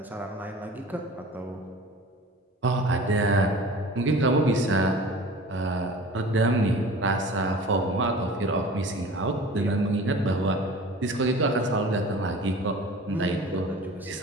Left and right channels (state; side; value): normal; both; correlation 0.41